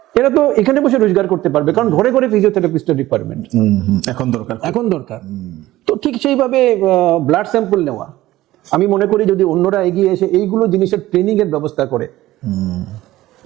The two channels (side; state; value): left; quieter; 16.1 dB